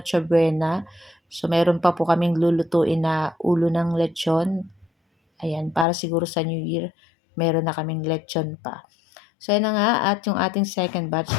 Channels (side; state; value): right; drops out; at 5.9 s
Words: Buena. So, meron pa po kaming lulutuin na ulo ng lechon. Ayan, para siguro sa New Year, meron na kaming lechon pa. So, yun na nga. At yung ating second batch,